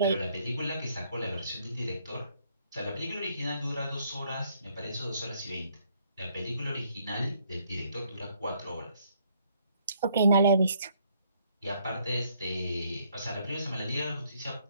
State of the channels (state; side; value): inverted; both; correlation -0.67